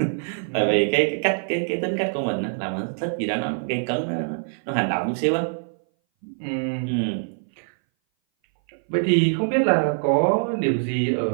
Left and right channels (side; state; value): left; silent; 59 dB below the other